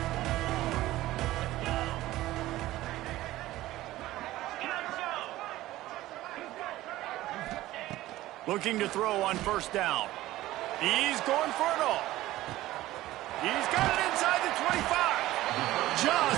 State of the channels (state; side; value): quieter; left; 16.1 dB